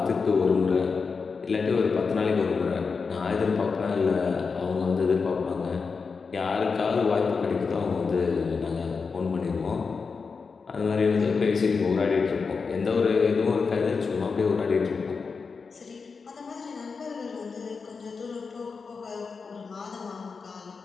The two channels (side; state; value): right; quieter; 5.0 dB